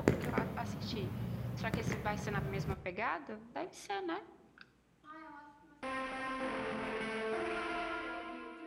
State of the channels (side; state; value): both; identical; correlation 1.00